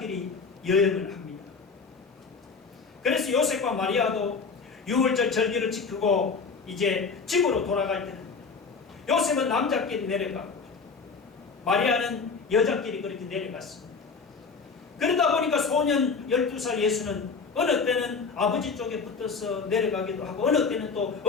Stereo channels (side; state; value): right; quieter; 5.0 dB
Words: 여행을 합니다. 그래서 요셉과 마리아도 6월절 절기를 지키고 이제 집으로 돌아갈 때는 요셉은 남자끼리 내려가고 마리아는 여자끼리 그렇게 내려갔습니다. 그러다 보니까 소년 12살 예수는 어느 때는 아버지 쪽에 붙어서 내려가기도 하고 어느 때는 또